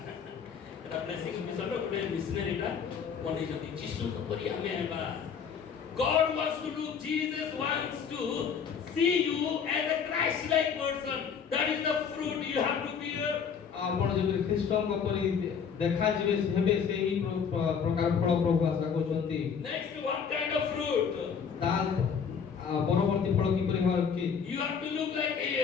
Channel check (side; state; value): right; quieter; 6.7 dB